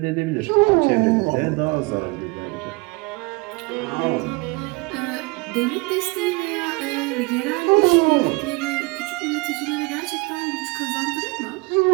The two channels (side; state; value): left; quieter; 26.4 dB